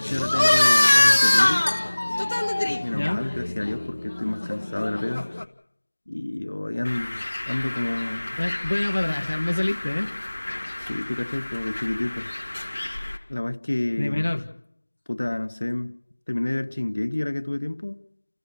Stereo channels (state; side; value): inverted; both; correlation -1.00